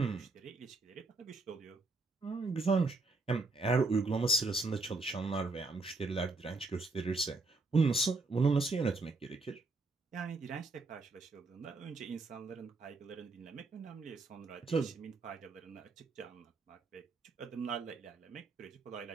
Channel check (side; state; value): left; quieter; 3.5 dB